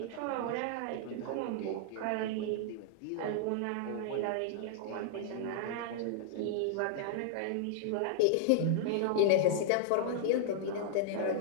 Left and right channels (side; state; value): both; different; correlation -0.01